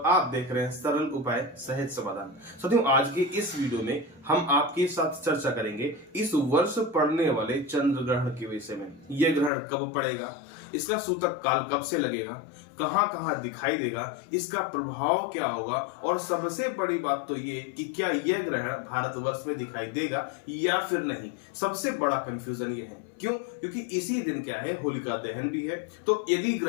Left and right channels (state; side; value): drops out; right; at 9.5 s